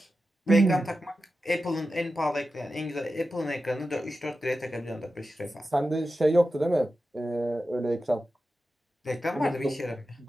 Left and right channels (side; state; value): both; normal; correlation 0.92